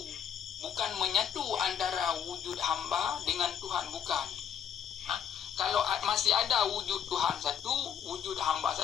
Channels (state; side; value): quieter; right; 8.7 dB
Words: menyatu antara wujud hamba dengan Tuhan, bukan. Kalau masih ada wujud Tuhan satu, wujud hamba